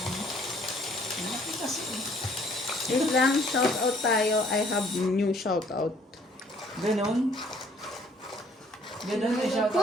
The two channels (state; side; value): normal; both; correlation 0.60